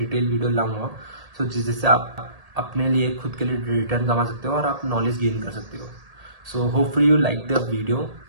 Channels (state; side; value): late; left; 1.8 ms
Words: वीडियो लाऊंगा, सो जिससे आप अपने लिए खुद के लिए रिटर्न कमा सकते हो और आप नॉलेज गेन कर सकते हो। So hopefully you like the video,